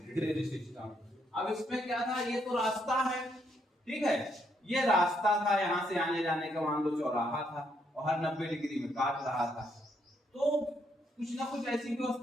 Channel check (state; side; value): normal; both; correlation 0.75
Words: Grid system. अब इसमें क्या था, ये तो रास्ता है, ठीक है, ये रास्ता था, यहाँ से आने जाने का मान लो चौराहा था और हर 90 डिग्री में काट रहा था। तो कुछ ना कुछ ऐसी